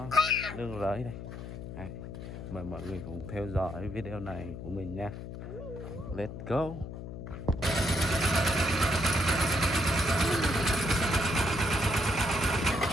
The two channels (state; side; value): noise; left; hum, 9 dB below the sound